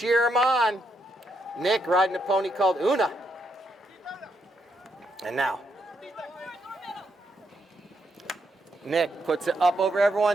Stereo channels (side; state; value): both; normal; correlation 0.78